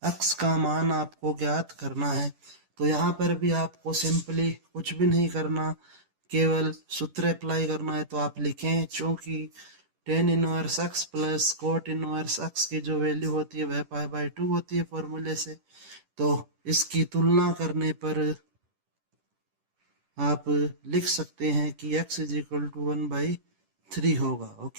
x का मान आपको ज्ञात करना है। तो यहाँ पर भी आपको सिंपली कुछ भी नहीं करना, केवल सूत्र अप्लाई करना है। तो आप लिखें, चूंकि ten inverse x plus cot inverse x की जो वैल्यू होती है वह पाई/2 होती है फॉर्मूले से, तो इसकी तुलना करने पर आप लिख सकते हैं कि x इज इक्वल टू 1/3 होगा।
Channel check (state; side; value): late; left; 10 ms